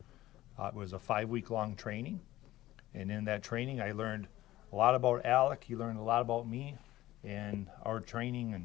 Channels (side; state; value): right; quieter; 15.9 dB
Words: It was a 5-week-long training, and in that training I learned a lot about Alek. He learned a lot about me, and our training